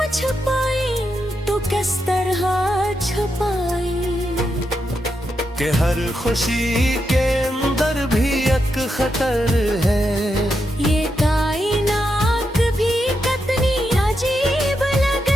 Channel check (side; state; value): both; normal; correlation 0.84